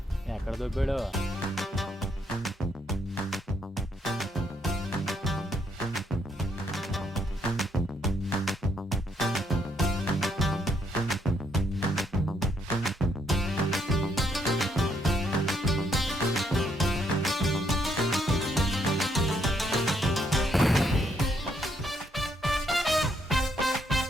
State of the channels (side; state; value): both; normal; correlation 0.72